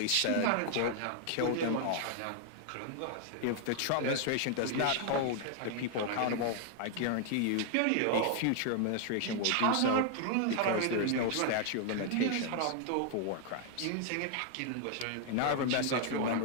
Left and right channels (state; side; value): different; both; correlation 0.00